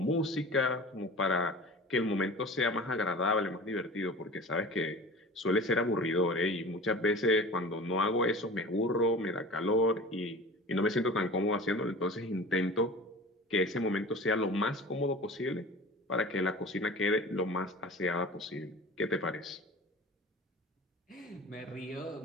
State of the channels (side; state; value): both; normal; correlation 0.38